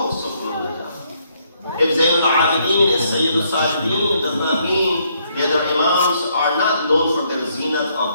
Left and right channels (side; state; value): both; inverted; correlation -0.71